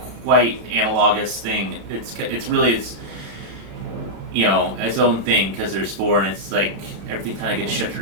quite analogous thing. It's really its own thing because there's four, and it's like everything kind of gets shifted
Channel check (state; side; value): late; left; 35 ms